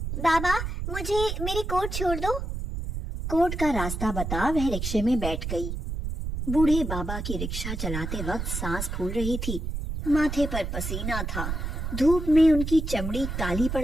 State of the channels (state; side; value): noise; right; rumble, 4 dB below the sound